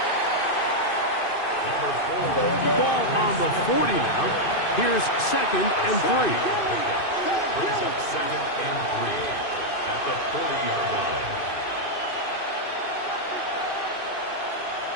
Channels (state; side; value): late; right; 2.5 ms